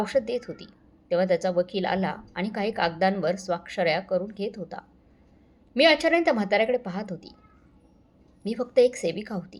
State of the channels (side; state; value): both; identical; correlation 1.00